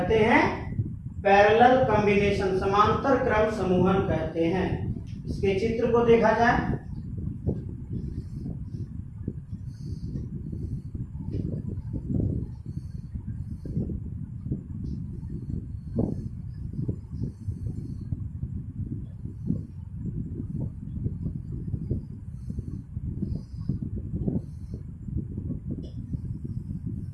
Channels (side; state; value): both; identical; correlation 1.00